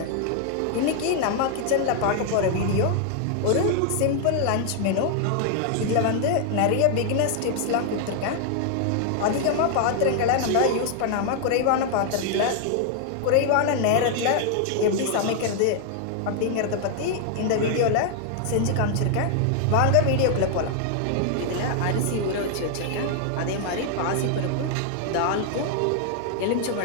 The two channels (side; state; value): both; different; correlation 0.00